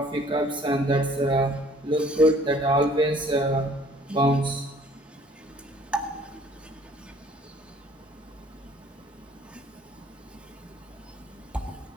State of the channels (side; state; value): both; normal; correlation 0.56